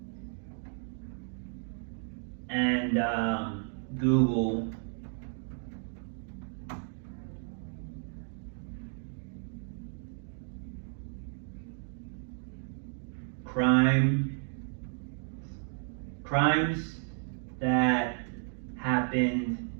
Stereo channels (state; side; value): silent; left; 56 dB below the other